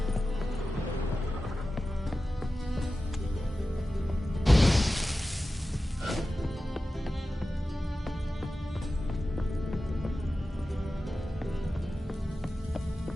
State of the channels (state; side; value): normal; both; correlation 0.94